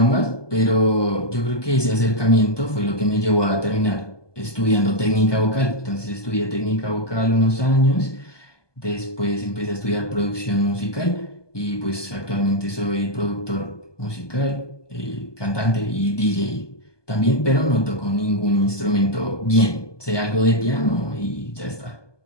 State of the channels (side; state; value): right; late; 1.2 ms